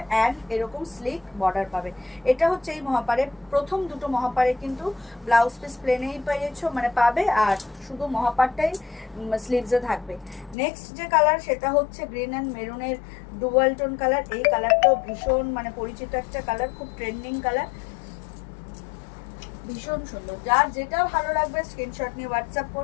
অ্যান্ড এরকম স্লিক বর্ডার পাবে। এটা হচ্ছে এই মহাপারে প্রথম দুটো মহাপারে কিন্তু ব্লাউজ পিস প্লেনেই পেয়েছো মানে পাবে, আর শুধু মহাপারটাই স্লিভসে থাকবে। নেক্সট যে কালার সেটা হচ্ছে গ্রিন অ্যান্ড মেরুনের ডুয়াল টোন কালার। এই কালারটাও ভীষণ মানে পরিচিত একটা কালার, খুব ট্রেন্ডিং কালার, ভীষণ সুন্দর। যার যেটা ভালো লাগবে স্ক্রিনশট নিয়ে হোয়াটসঅ্যাপ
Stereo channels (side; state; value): right; drops out; at 10.6 s